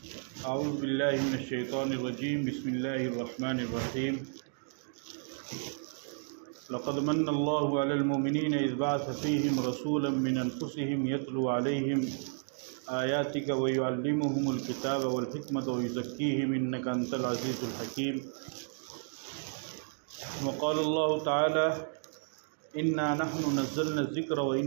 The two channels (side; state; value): left; silent; digital silence